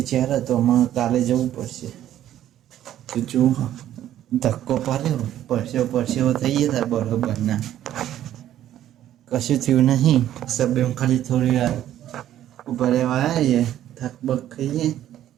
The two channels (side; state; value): left; quieter; 12.0 dB